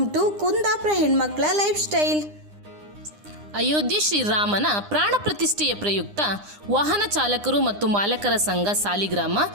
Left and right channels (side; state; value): left; late; 9.8 ms